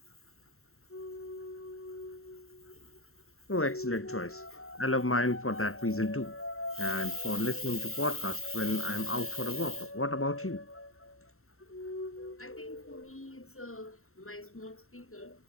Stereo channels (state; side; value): late; right; 0.63 ms